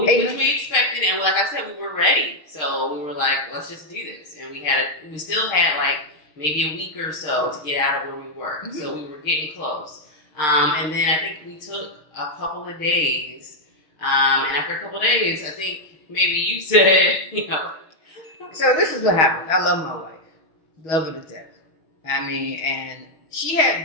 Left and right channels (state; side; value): late; right; 6.5 ms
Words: we expected, and like I said, we were ready. So we were like, let's just do this. And we still had like maybe a week or so to get out of where we were. Mm-hmm. So we were getting close. And then I think we took a couple of days. And after a couple of days, I think maybe you said, So this is what happened. I love my wife. Love her to death. I mean, and she had